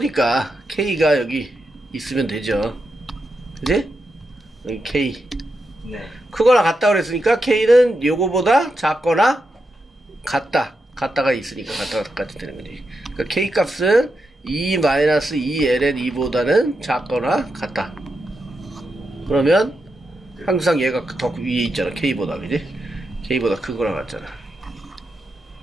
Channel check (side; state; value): both; normal; correlation 0.86